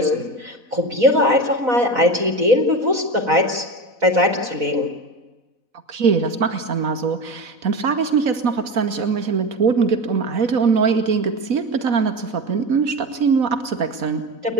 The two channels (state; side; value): late; left; 4.0 ms